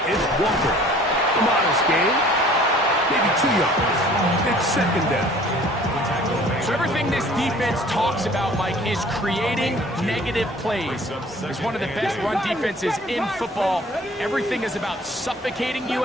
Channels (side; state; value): both; normal; correlation 0.51